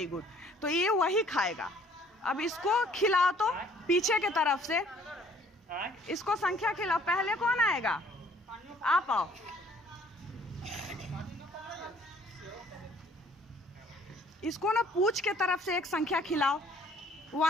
गुड। तो ये वही खाएगा। अब इसको खिलाओ तो पीछे के तरफ से इसको संख्या खिलाओ। पहले कौन आएगा? आप आओ। इसको ना पूछ के तरफ से एक संख्या खिलाओ।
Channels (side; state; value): both; normal; correlation 0.58